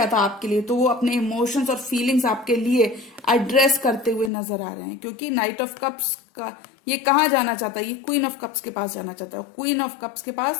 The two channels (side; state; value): right; drops out; at 4.3 s